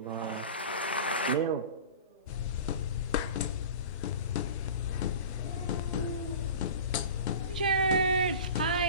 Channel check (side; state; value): both; inverted; correlation -0.36